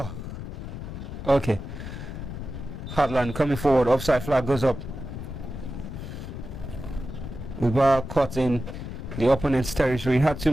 okay. Heartland coming forward. Offside flag goes up. Mubarak caught in the opponent's territory. Had too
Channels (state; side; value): noise; left; rumble, 8 dB below the sound